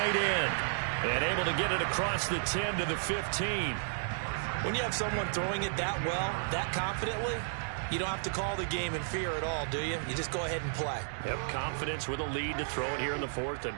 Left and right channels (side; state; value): left; silent; 56 dB below the other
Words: end. And able to get it across the 10 to the 15. When you have someone throwing it that well, that confidently, you don't have to call the game in fear at all, do you? You just go ahead and play. Yep, confidence with a lead to throw it here in the 4th,